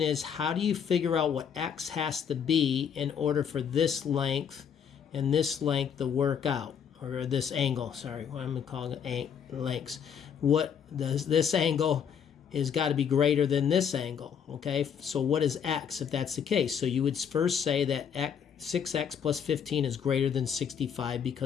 is, how do you figure out what X has to be in order for this length and this length to work out? Or this angle, sorry, what I'm calling it lengths. What does this angle is got to be greater than this angle, okay? So what is X if that's the case? So you would first say that 6X plus 15 is greater than 65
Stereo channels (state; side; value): quieter; right; 7.7 dB